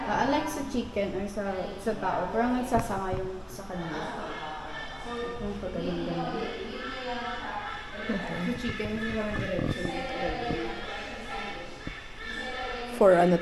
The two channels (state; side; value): identical; both; correlation 1.00